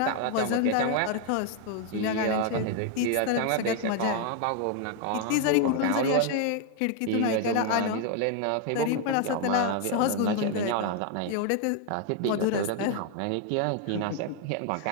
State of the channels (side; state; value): both; different; correlation 0.00